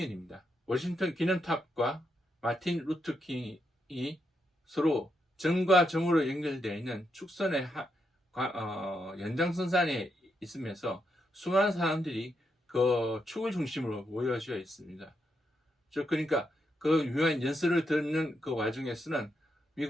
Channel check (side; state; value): both; normal; correlation 0.81